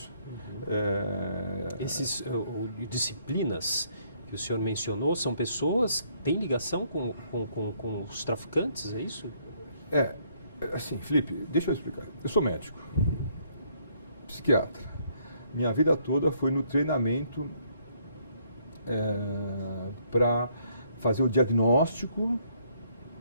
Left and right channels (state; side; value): inverted; both; correlation -0.68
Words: Essas disciplinas que o senhor mencionou são pessoas que têm ligação com os traficantes, é isso? Assim, Felipe, deixa eu explicar. Eu sou médico, psiquiatra. Minha vida toda foi no treinamento para fazer o diagnóstico,